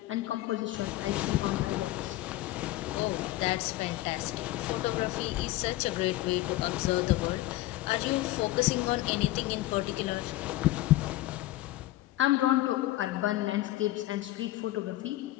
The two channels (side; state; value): right; quieter; 16.7 dB